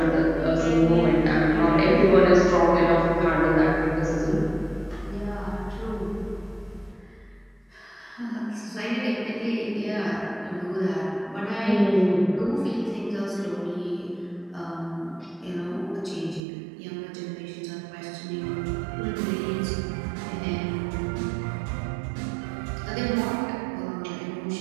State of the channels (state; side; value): drops out; left; at 16.4 s